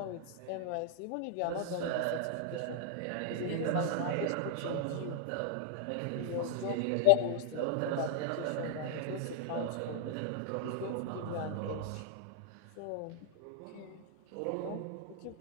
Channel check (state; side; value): different; both; correlation -0.01